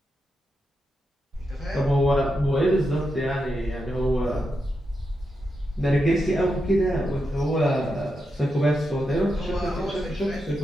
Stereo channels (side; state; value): both; normal; correlation 0.86